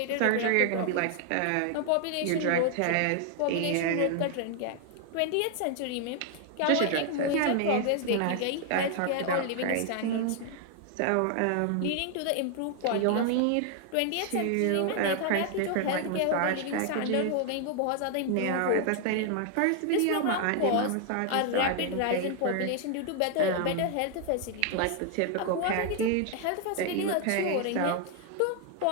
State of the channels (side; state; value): both; different; correlation 0.00